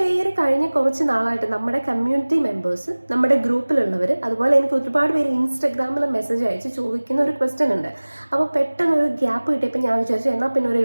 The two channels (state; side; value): inverted; both; correlation -1.00